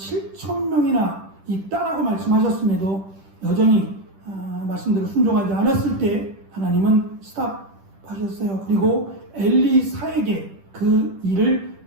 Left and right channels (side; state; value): left; late; 10 ms